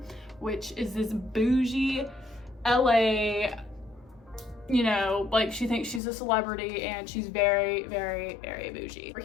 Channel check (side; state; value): right; drops out; at 6.0 s